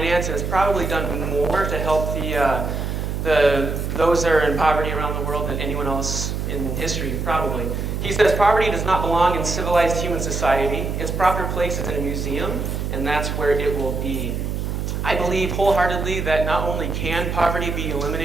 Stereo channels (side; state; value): right; noise; hum, 3 dB below the sound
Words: and has probably done more to help those that are in poverty around the world than anyone else in history, probably. He says poverty does not belong in civilized human society. Its proper place is in a museum, and that's where it will be. I believe wholeheartedly that not only can poverty be